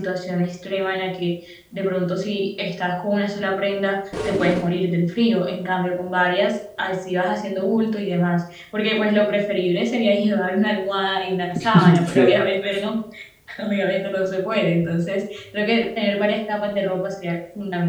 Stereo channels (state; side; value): identical; both; correlation 1.00